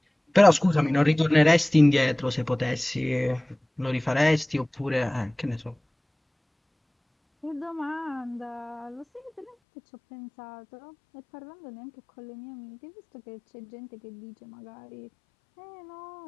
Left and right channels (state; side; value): drops out; right; at 9.6 s